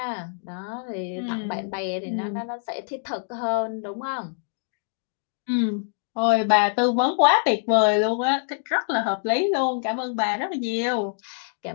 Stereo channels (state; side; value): silent; right; digital silence